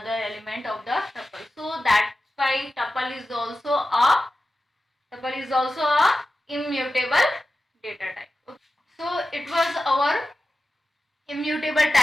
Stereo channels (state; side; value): normal; both; correlation 0.94